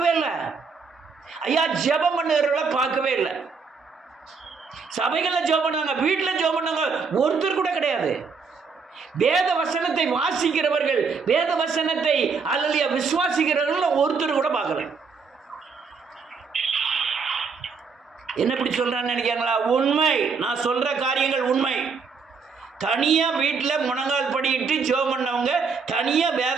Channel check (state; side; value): quieter; left; 5.1 dB